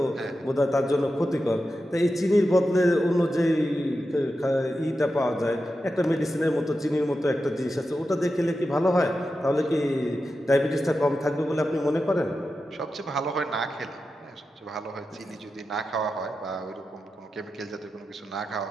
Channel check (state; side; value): normal; both; correlation 0.90